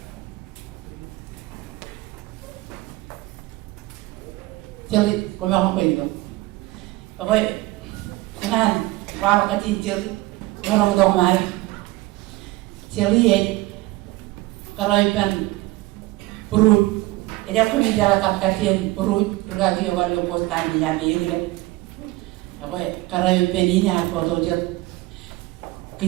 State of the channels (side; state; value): left; quieter; 19.9 dB